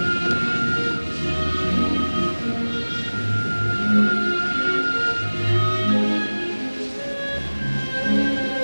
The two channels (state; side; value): inverted; both; correlation -1.00